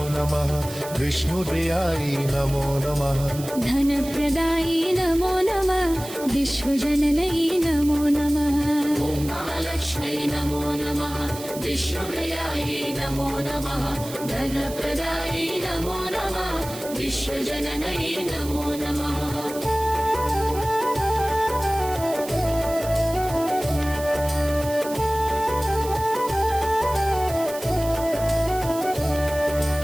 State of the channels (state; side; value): noise; right; hiss, 13 dB below the sound